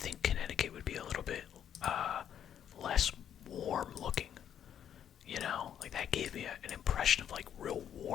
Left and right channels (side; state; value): right; quieter; 9.4 dB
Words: Connecticut would be a little bit less warm looking. You know, like that gave me an impression of like real